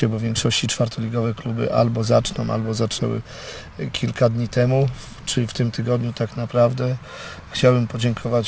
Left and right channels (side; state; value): both; identical; correlation 1.00